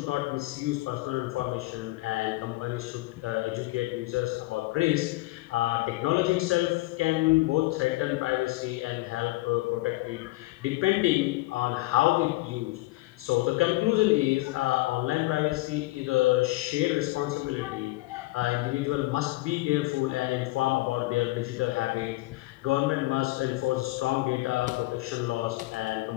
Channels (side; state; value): right; quieter; 20.0 dB